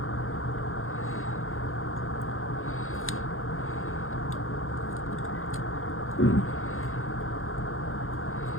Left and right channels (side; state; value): right; late; 0.61 ms